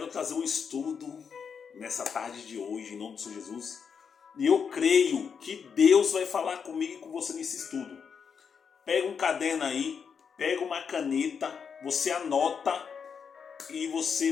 trazer um estudo nessa tarde de hoje, em nome do Senhor Jesus. E eu creio que Deus vai falar comigo e com você nesse estudo. Pega um caderno aí, pega uma caneta, você anota e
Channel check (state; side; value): quieter; right; 6.5 dB